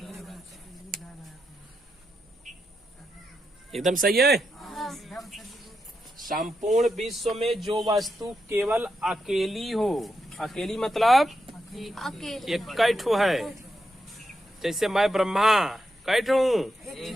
एकदम सही है। संपूर्ण विश्व में जो वस्तु केवल अकेली हो, अकेली मतलब अकेले एक कैठो है। जैसे मैं ब्रह्मा कैठ हूँ,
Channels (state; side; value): normal; both; correlation 0.85